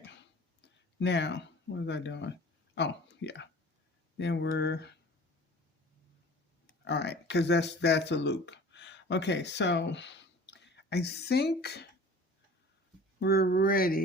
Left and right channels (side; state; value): both; normal; correlation 0.44